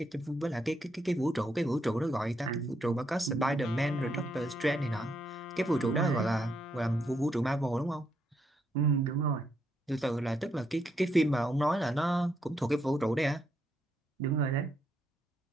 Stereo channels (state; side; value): normal; both; correlation 0.77